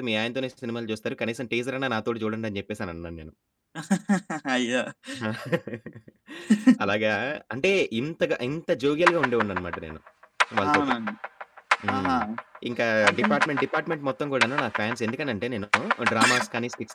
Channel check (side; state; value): both; identical; correlation 1.00